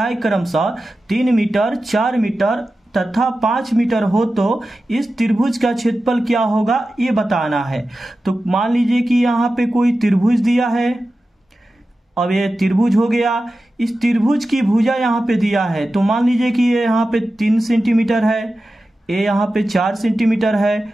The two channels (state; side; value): normal; both; correlation 0.93